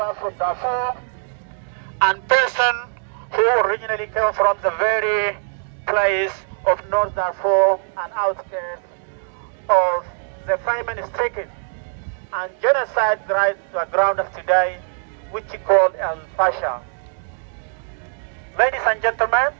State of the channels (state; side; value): silent; left; digital silence